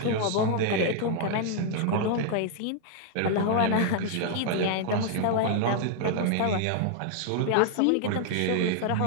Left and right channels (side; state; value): both; different; correlation 0.00